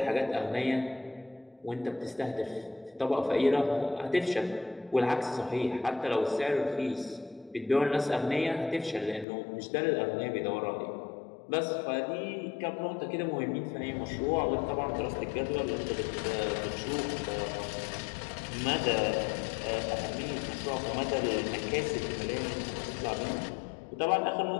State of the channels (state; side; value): drops out; right; at 9.2 s